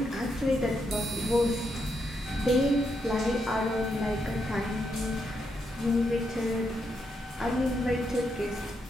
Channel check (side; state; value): both; normal; correlation 0.80